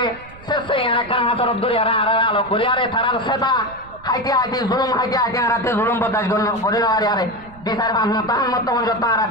শেষে একটা হাতের দূরে আর আলো করি আরে তারার সেটা হাইতে জুলুম হাইতে আরাতে জুলুম বদাস করি না আরে বিচার তাহার মতো যত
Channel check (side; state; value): right; noise; rumble, 21 dB below the sound